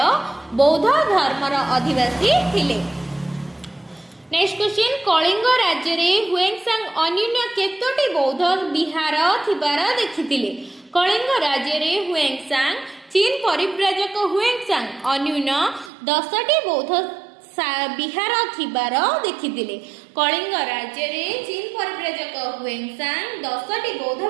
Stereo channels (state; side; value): drops out; left; at 15.9 s